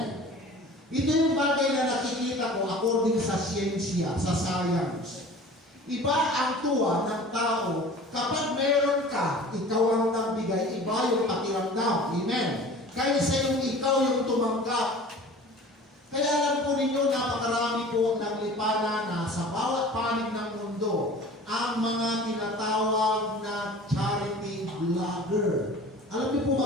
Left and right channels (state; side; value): normal; both; correlation 0.42